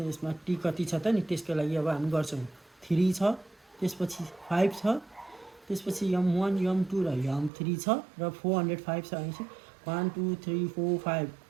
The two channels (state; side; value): drops out; left; at 7.5 s